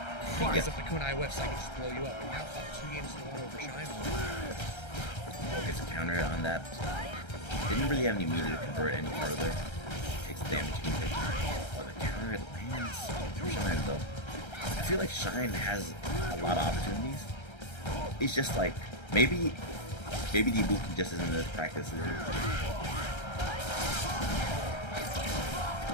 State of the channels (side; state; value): right; late; 1.3 ms